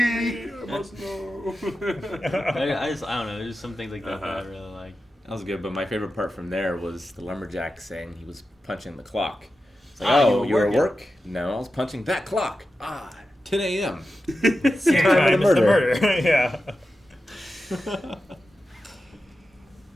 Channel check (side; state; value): both; normal; correlation 0.92